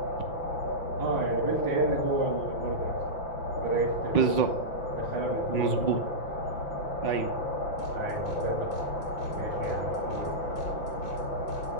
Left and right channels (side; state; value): right; late; 5.9 ms